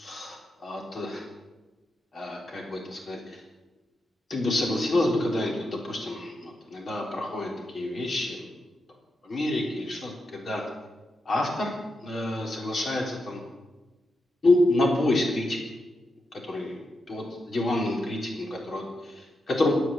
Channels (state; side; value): normal; both; correlation 0.86